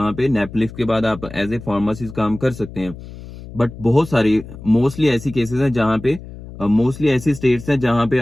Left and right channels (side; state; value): left; noise; hum, 14 dB below the sound